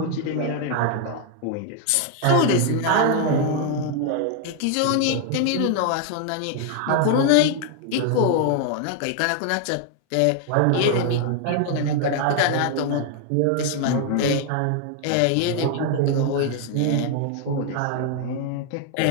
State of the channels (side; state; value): both; different; correlation 0.00